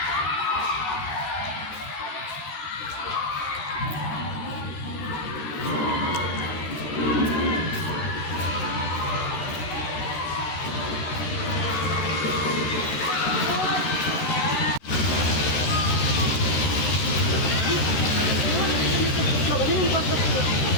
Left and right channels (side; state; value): right; late; 13 ms